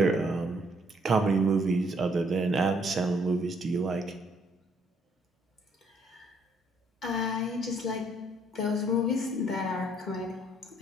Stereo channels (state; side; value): normal; both; correlation 0.66